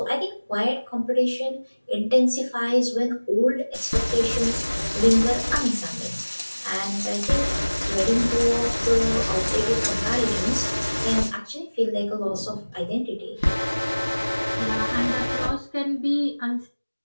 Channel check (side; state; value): both; inverted; correlation -1.00